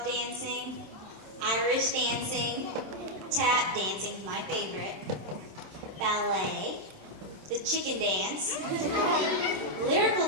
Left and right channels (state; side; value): late; left; 27 ms